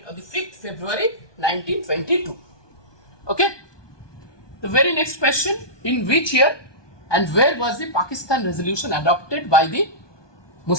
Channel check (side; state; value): right; late; 1.2 ms